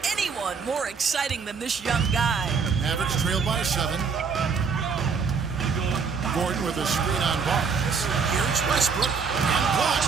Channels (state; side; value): quieter; left; 5.6 dB